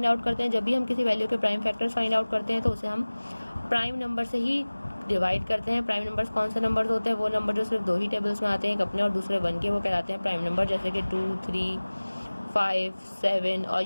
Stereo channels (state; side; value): inverted; both; correlation -1.00